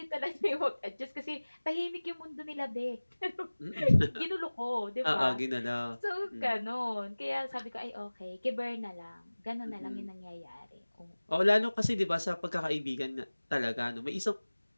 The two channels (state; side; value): inverted; both; correlation -1.00